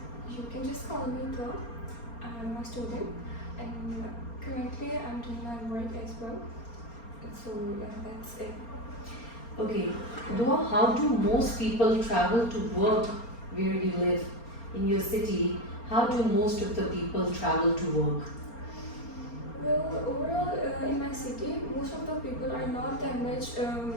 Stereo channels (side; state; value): right; late; 4.3 ms